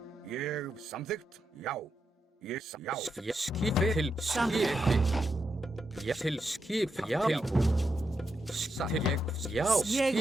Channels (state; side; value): normal; both; correlation 0.84